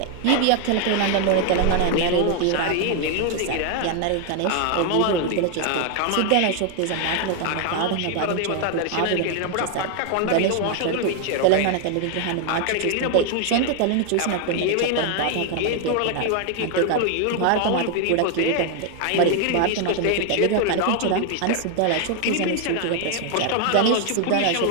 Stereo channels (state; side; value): different; both; correlation 0.01